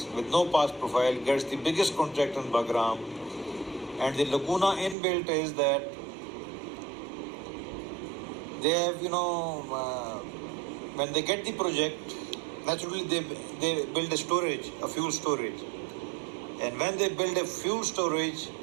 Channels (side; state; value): left; drops out; at 5.0 s